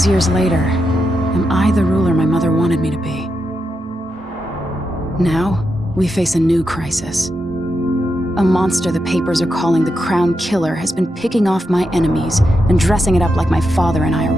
years later, am I the ruler my mother wanted me to be? Now, we face a new crisis. A monster the papers are calling the Crown Killer has been picking off my enemies and dressing it up like my father and I are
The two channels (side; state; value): both; normal; correlation 0.86